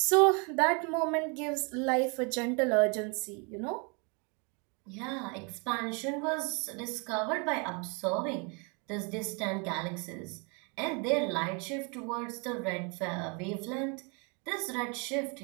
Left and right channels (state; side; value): quieter; left; 33.9 dB